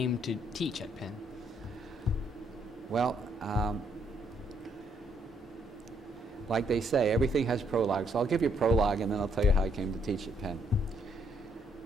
to teach at Penn. Well, like they say, everything has prologue. So I'll give you a prologue, and then I'll tell you how I came to teach at Penn.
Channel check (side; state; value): both; normal; correlation 0.71